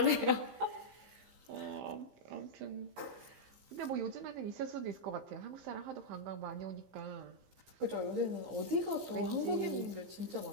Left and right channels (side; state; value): left; late; 15 ms